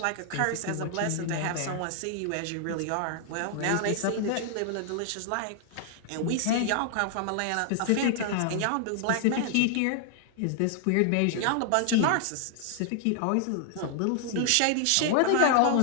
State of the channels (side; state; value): both; different; correlation 0.00